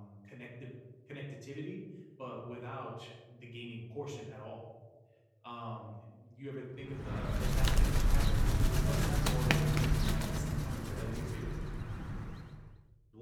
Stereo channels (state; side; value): identical; both; correlation 1.00